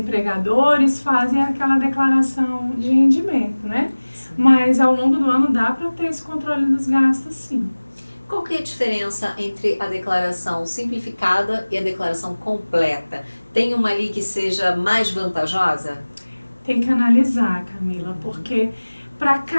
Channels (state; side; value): inverted; both; correlation -1.00